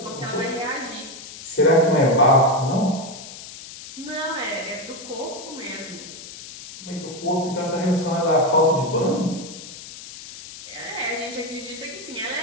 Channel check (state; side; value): noise; left; hiss, 14 dB below the sound